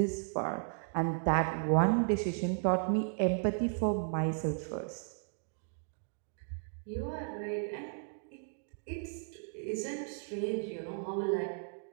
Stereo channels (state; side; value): silent; left; 54 dB below the other